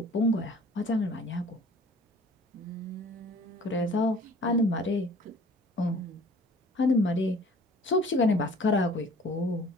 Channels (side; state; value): both; normal; correlation 0.50